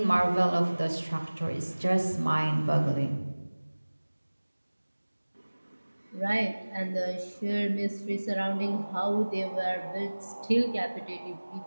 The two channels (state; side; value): inverted; both; correlation -1.00